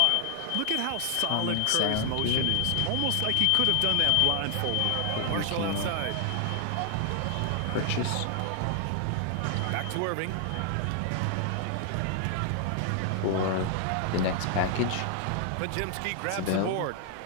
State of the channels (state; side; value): different; both; correlation 0.00